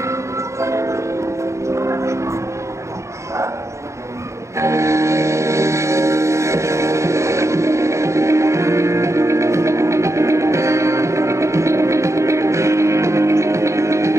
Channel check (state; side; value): late; left; 0.14 ms